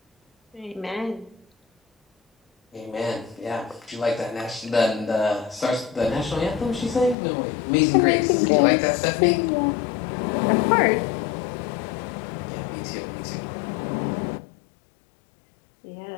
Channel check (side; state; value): right; drops out; at 7.2 s